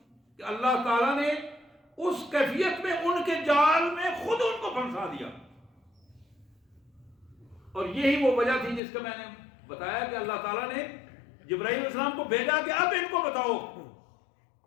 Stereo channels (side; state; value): right; drops out; at 8.8 s